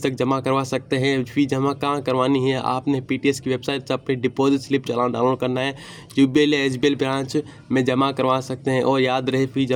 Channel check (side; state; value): both; identical; correlation 1.00